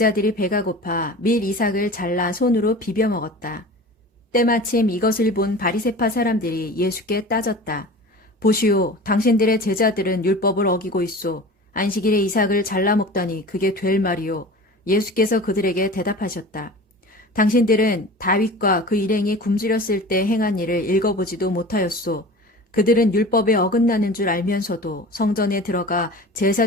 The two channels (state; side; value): normal; both; correlation 0.37